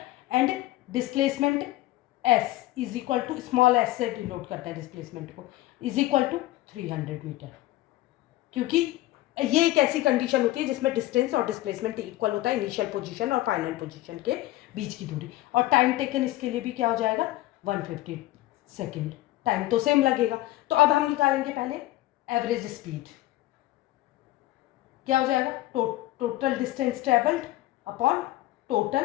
and displacement S is equal to, small S से डिनोट करता है डिस्प्लेसमेंट को, इज इक्वल टू 300 मीटर। क्योंकि ये एक ऐसी कंडीशन होती है जिसमें डिस्टेंस और डिस्प्लेसमेंट इक्वल होता है, इनिशियल पोजीशन और फाइनल पोजीशन के बीच की दूरी। और टाइम टेकन इसके लिए भी क्या हो जाएगा 150 सेकेंड। टाइम तो सेम लगेगा। तो अब हम निकालेंगे पहले एवरेज स्पीड। क्या हो जाएगा total distance travelled upon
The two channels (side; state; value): right; quieter; 16.6 dB